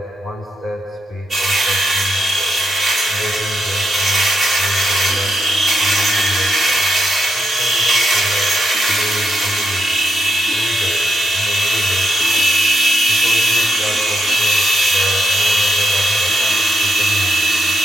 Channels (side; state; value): both; normal; correlation 0.82